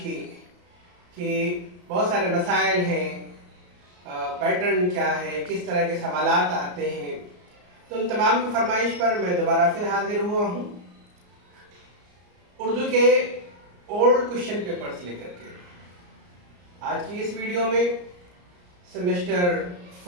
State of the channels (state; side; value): late; left; 34 ms